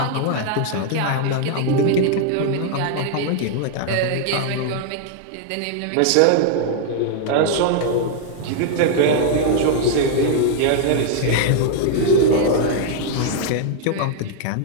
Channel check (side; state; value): both; different; correlation -0.01